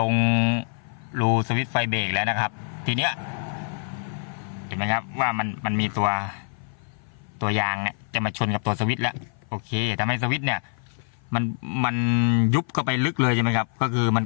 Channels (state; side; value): silent; right; 55 dB below the other